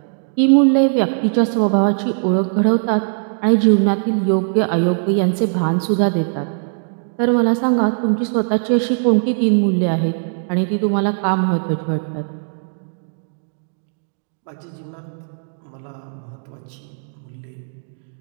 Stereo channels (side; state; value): left; silent; digital silence